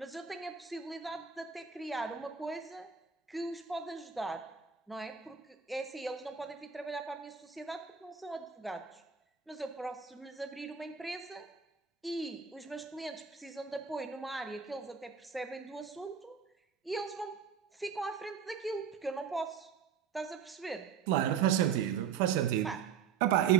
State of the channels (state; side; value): quieter; left; 6.9 dB